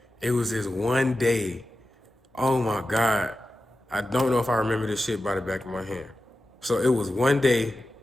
it was this one day. Oh my God. I don't know if I remember this shit by the back of my hand. So it was one day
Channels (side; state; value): both; normal; correlation 0.92